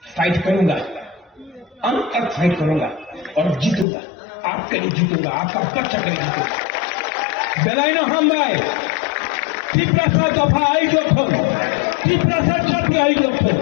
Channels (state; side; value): drops out; right; at 3.9 s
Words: फाइट करूंगा, अंत तक फाइट करूंगा और जीतूंगा, आपके लिए जीतूंगा, आपका पक्ष के लिए जीतूंगा। बेलाइनो हम भाई तिपरासा दफा आई दफा, तिपरासा जाति आई दफा,